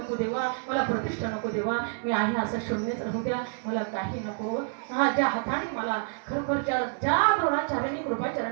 देवा, मला प्रतिष्ठा नको देवा. मी आहे असं शून्यच राहू द्या, मला काही नको. हा, ज्या हाताने मला खरोखर ज्या द्रोणाचार्याने,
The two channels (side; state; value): left; silent; 59 dB below the other